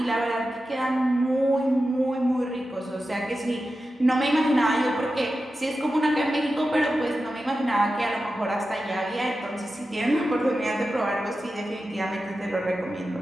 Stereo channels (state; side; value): normal; both; correlation 0.92